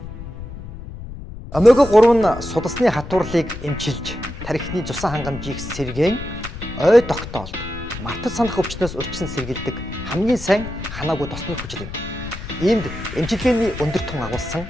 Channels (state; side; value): noise; left; rumble, 11 dB below the sound